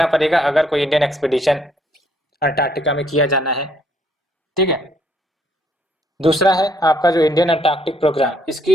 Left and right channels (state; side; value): normal; both; correlation 0.68